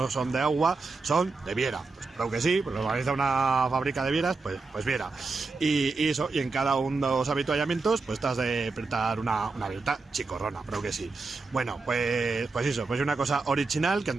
son de agua, son de Viera. Pues creo que sí, pues lo organiza una fábrica de Vieras, pues Viera. Y eso, y en cada uno de los avituallamientos pues estás de apretar una vieta chicorrona, creo que sí. Bueno, pues eso, pues una cosa original, que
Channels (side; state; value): left; quieter; 4.0 dB